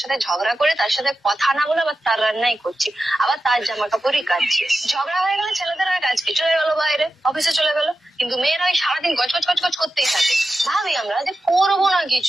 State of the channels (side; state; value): both; normal; correlation 0.92